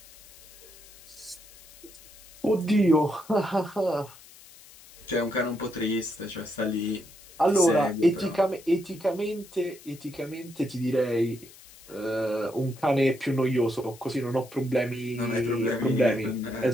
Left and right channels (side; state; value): left; noise; hiss, 21 dB below the sound